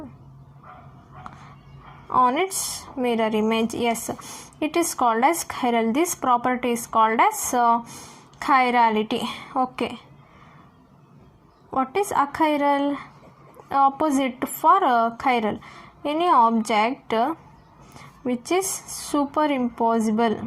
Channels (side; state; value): both; identical; correlation 1.00